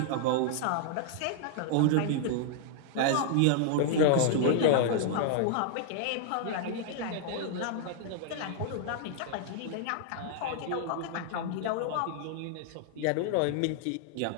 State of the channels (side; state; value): both; different; correlation -0.01